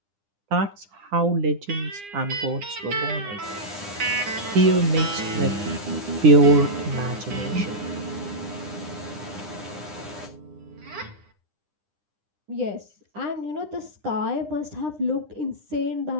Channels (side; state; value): left; late; 9.9 ms